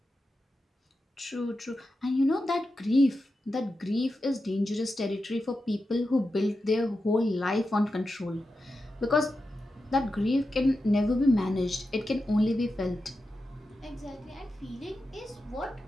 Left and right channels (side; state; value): both; normal; correlation 0.90